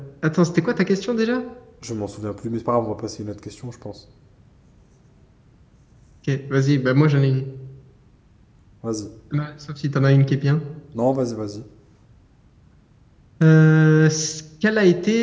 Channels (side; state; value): both; identical; correlation 1.00